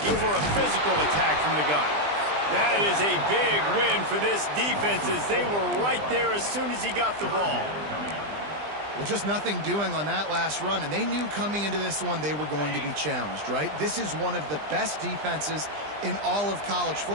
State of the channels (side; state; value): left; late; 20 ms